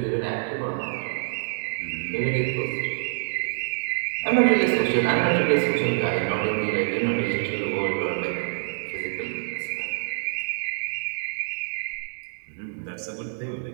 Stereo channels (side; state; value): left; silent; digital silence